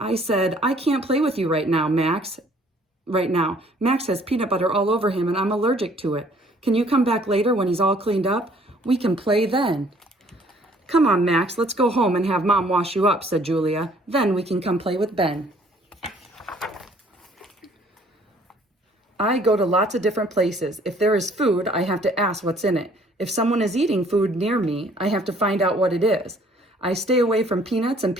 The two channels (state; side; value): normal; both; correlation 0.59